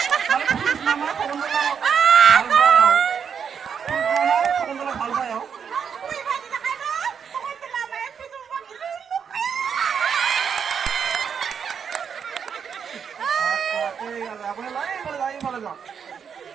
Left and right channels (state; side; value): quieter; left; 7.1 dB